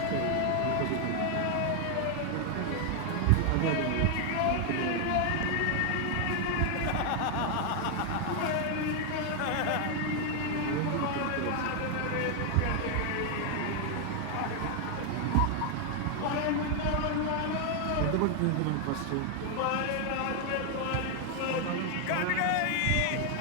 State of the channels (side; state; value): both; different; correlation 0.00